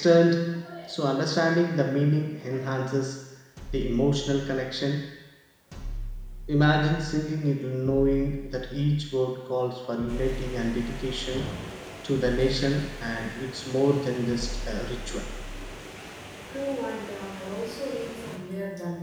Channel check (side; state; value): both; identical; correlation 1.00